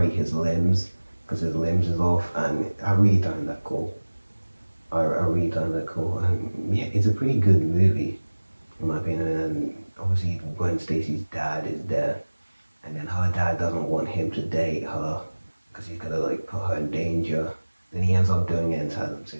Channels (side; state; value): both; inverted; correlation -1.00